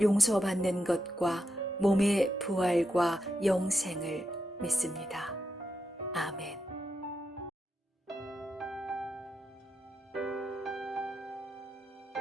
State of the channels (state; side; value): normal; both; correlation 0.85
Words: 용서받는 것과 몸의 부활과 영생을 믿습니다. 아멘.